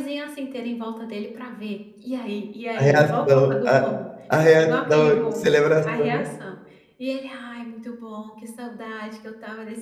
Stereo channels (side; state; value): both; identical; correlation 1.00